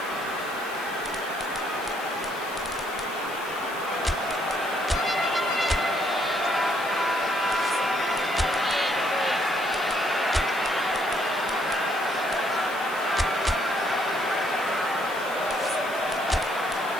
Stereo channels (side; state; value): left; noise; hiss, 16 dB below the sound